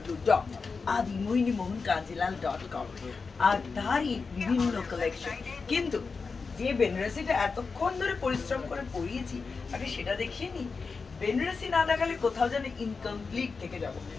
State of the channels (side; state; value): right; quieter; 4.7 dB